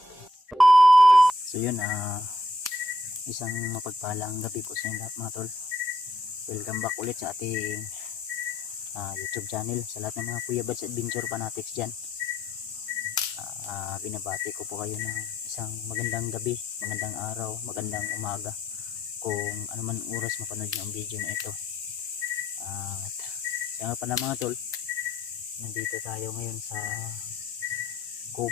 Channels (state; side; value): normal; both; correlation 0.72